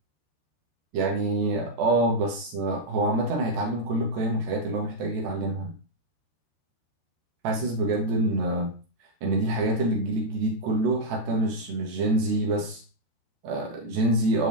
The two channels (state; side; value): late; left; 14 ms